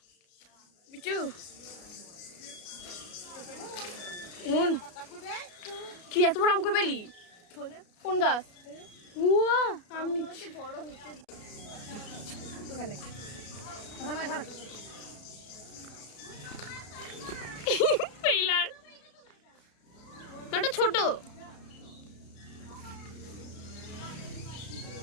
বিশু মুন কি এত বড় আম কই পেলি কোন গাছ উয়া আম নিচ্ছি বড় হচ্ছে ছোট।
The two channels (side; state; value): right; late; 33 ms